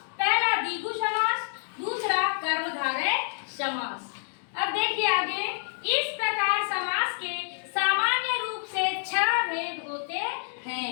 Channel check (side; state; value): right; silent; digital silence